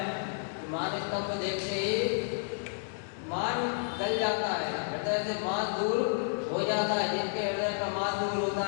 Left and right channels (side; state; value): right; silent; digital silence